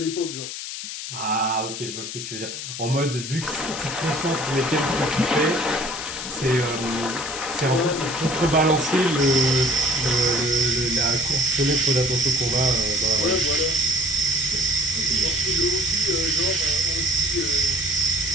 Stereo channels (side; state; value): left; noise; hiss, 7 dB below the sound